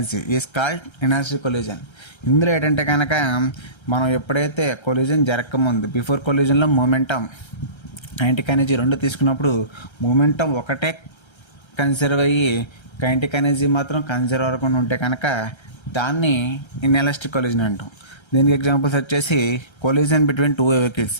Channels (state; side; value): late; right; 1.3 ms